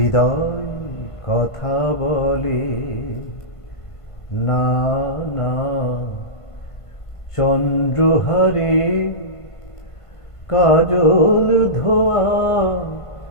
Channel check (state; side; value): late; right; 1.5 ms